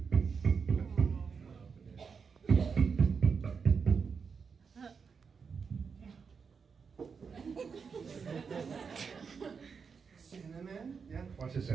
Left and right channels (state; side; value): quieter; left; 5.7 dB